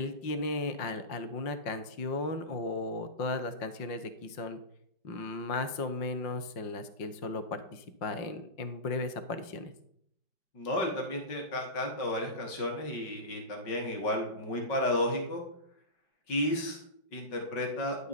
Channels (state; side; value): late; right; 5.6 ms